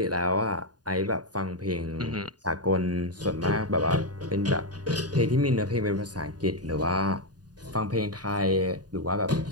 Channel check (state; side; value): late; left; 0.69 ms